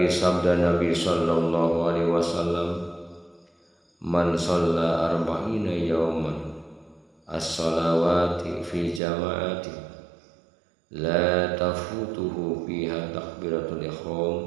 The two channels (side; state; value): left; drops out; at 9.0 s